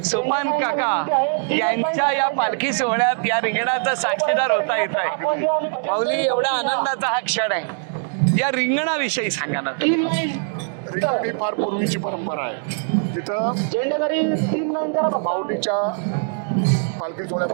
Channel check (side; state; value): left; silent; digital silence